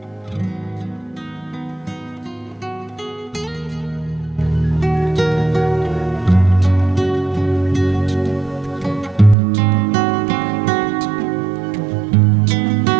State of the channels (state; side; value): drops out; left; at 9.3 s